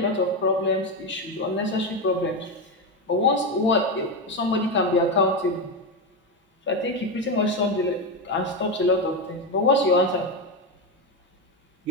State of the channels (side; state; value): both; normal; correlation 0.12